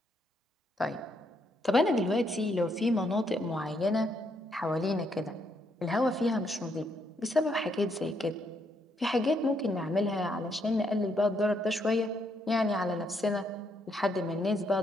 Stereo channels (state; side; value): normal; both; correlation 0.75